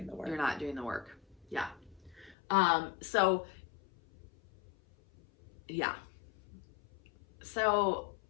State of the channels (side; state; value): right; drops out; at 2.4 s